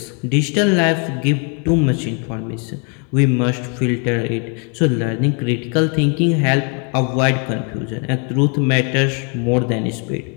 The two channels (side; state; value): right; quieter; 37.3 dB